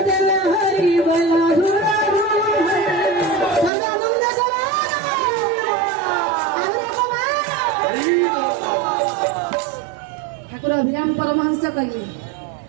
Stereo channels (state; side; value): drops out; left; at 3.7 s